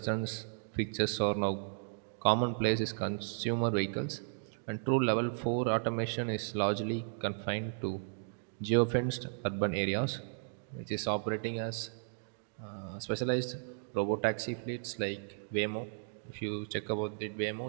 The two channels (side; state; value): left; silent; digital silence